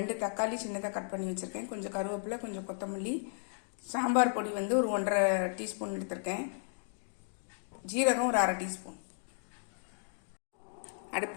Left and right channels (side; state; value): right; silent; digital silence